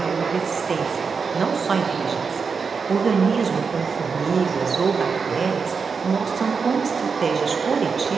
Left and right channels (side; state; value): left; quieter; 5.4 dB